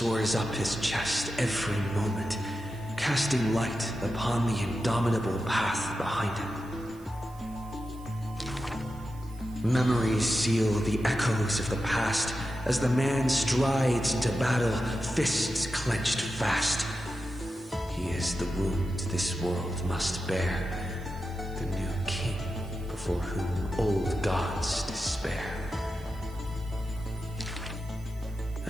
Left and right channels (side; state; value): right; noise; hiss, 26 dB below the sound